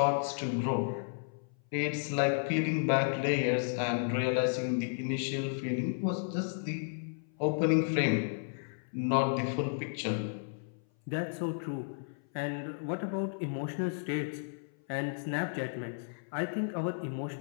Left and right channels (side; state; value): right; silent; 56 dB below the other